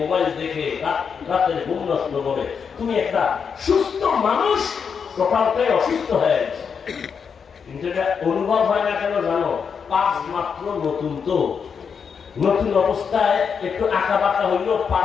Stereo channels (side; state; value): right; quieter; 6.4 dB